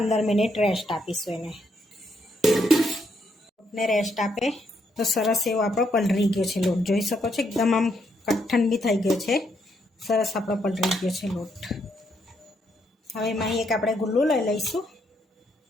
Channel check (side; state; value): both; normal; correlation 0.76